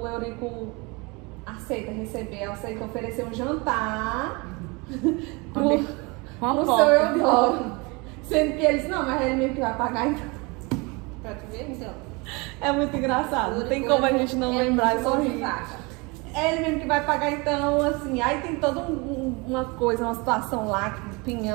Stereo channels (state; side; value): quieter; left; 27.5 dB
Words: Eurico aceita oferecer um jantar pro seu Eudoro. Sendo que eles, não, mas ele mesmo que vai pagar então. Pra tu ver, então. É muito engraçado, não tem como a gente não lembrar e sorrir. É ele mesmo que vai pagar então, assim, aí tem toda uma situação lá, que